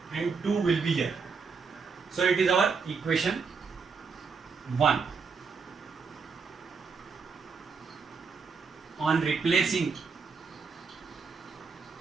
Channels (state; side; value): quieter; left; 5.2 dB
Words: and 2 will be here. So it is our equation 1. on replacing